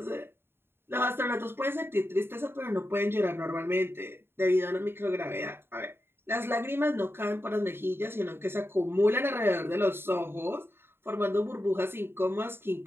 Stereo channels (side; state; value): left; late; 0.11 ms